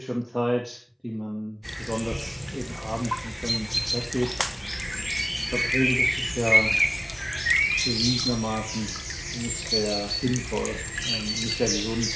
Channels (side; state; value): both; identical; correlation 1.00